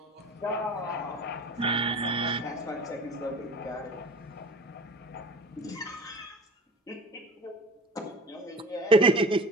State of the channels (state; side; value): normal; both; correlation 0.38